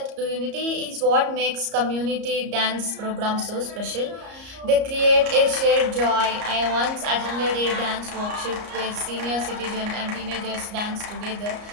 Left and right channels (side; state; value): left; late; 34 ms